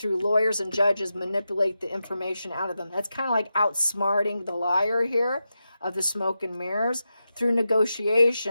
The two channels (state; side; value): inverted; both; correlation -0.90